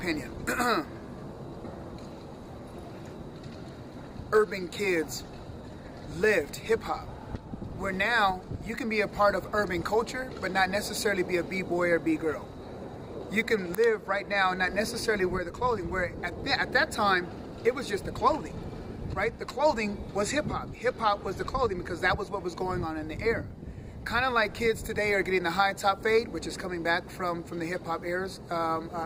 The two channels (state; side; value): identical; both; correlation 1.00